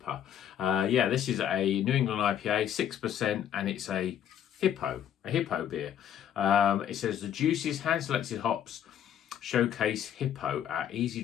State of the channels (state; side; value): quieter; right; 9.9 dB